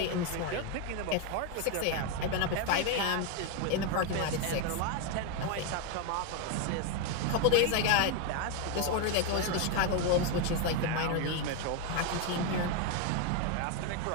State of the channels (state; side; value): different; both; correlation 0.01